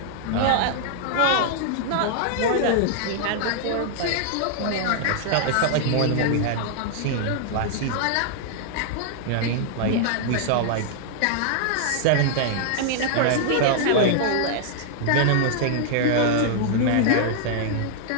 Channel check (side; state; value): both; different; correlation 0.00